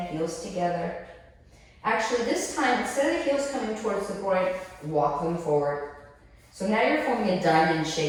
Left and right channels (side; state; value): both; identical; correlation 1.00